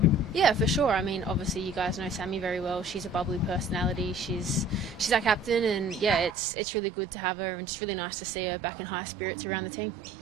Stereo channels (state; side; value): drops out; left; at 6.4 s